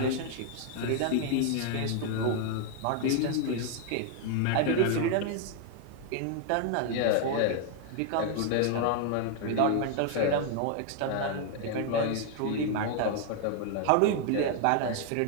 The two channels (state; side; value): different; both; correlation 0.00